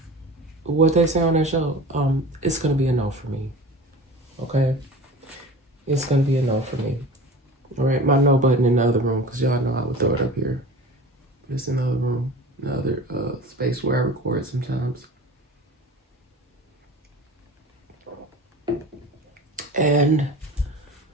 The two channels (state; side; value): normal; both; correlation 0.37